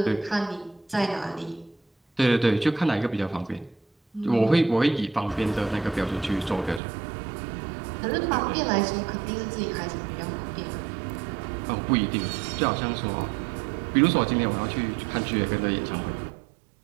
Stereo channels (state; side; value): drops out; left; at 6.8 s